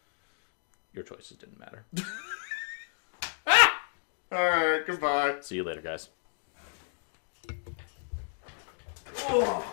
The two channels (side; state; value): right; silent; digital silence